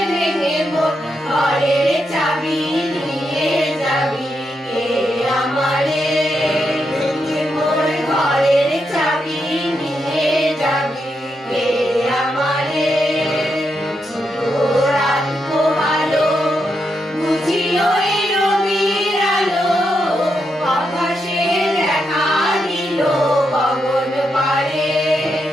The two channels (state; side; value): normal; both; correlation 0.83